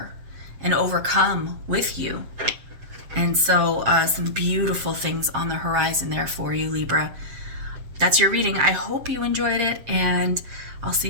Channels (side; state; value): left; late; 7.6 ms